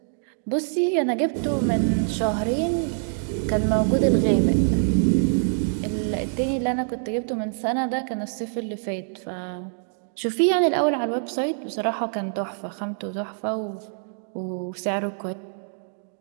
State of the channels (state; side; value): silent; left; digital silence